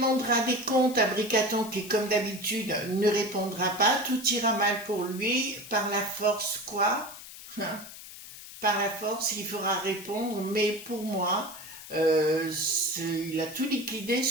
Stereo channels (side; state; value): left; noise; hiss, 14 dB below the sound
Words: des comptes à Bricaton qui, comme d'habitude, ne répondra pas. Tout ira mal pour lui. Par la force, quoi? Par la force, il fera répondre. Mais pour moi, il a tout liquidé,